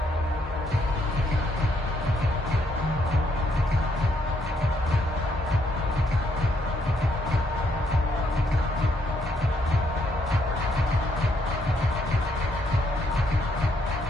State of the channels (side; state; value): both; normal; correlation 0.73